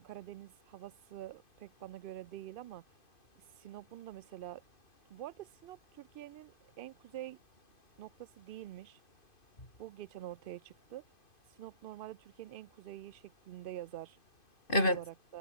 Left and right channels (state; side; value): late; right; 2.5 ms